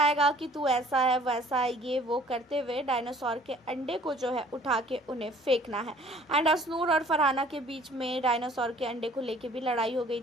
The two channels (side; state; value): both; normal; correlation 0.53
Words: कि तू ऐसा है वैसा है, ये वो करते हुए डायनासोर के अंडे को जो है उठा के उन्हें फेंकना है। एंड असनूर और फरहाना के बीच में डायनासोर के अंडे को लेके भी लड़ाई हो गई